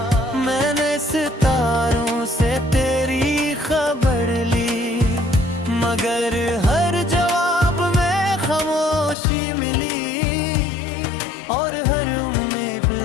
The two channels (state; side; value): drops out; right; at 9.2 s